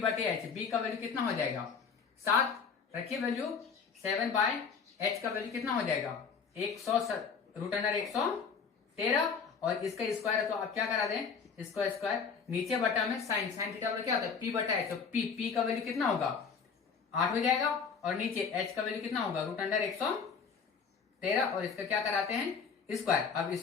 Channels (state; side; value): quieter; right; 5.9 dB